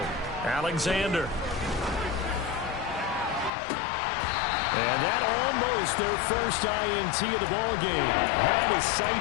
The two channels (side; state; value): right; drops out; at 3.5 s